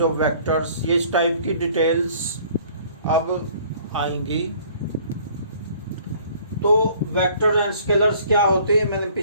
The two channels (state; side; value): inverted; both; correlation -0.55